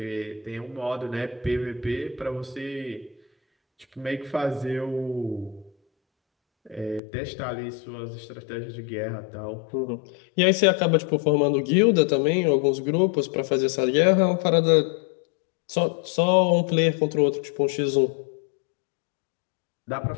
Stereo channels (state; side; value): drops out; right; at 7.0 s